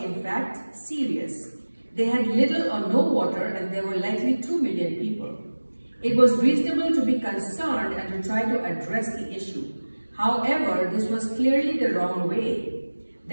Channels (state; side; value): inverted; both; correlation -1.00